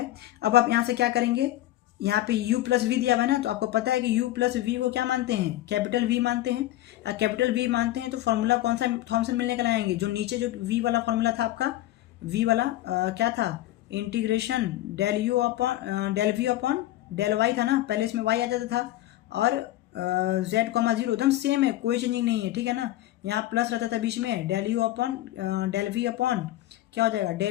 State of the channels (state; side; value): quieter; right; 15.0 dB